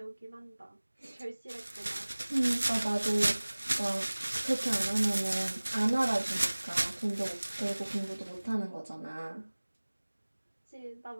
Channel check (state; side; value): inverted; both; correlation -1.00